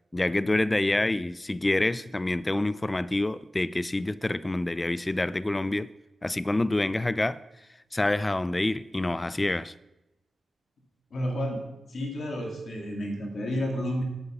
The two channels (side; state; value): both; normal; correlation 0.98